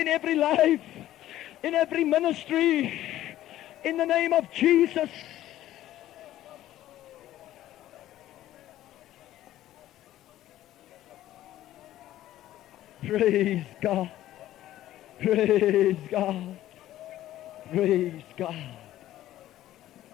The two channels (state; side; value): quieter; right; 13.7 dB